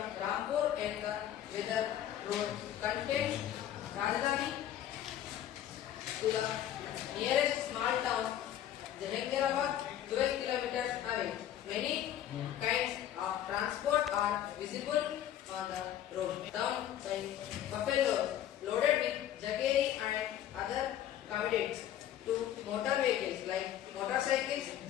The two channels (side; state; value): right; quieter; 11.3 dB